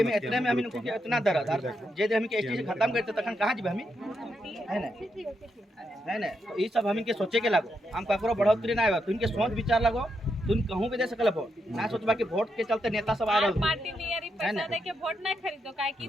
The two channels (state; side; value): normal; both; correlation 0.82